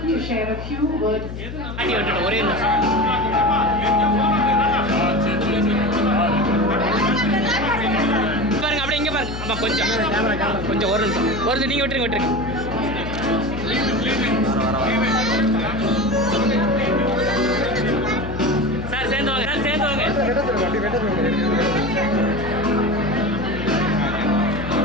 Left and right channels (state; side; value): noise; left; hum, 8 dB below the sound